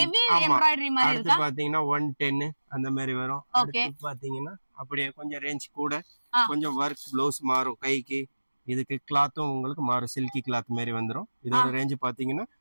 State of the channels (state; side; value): inverted; both; correlation -1.00